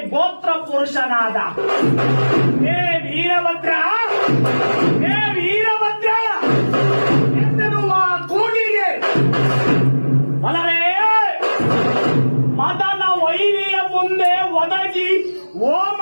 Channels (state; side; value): inverted; both; correlation -1.00